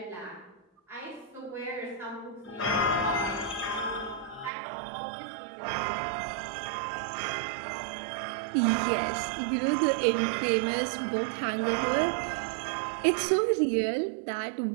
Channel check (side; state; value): left; drops out; at 4.5 s